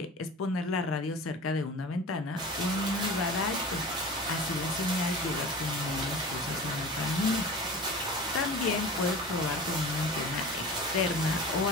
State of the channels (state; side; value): normal; both; correlation 0.36